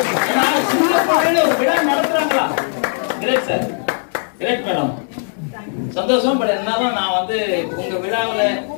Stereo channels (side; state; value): right; silent; digital silence